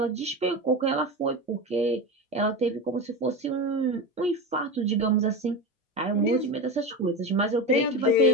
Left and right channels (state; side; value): normal; both; correlation 0.22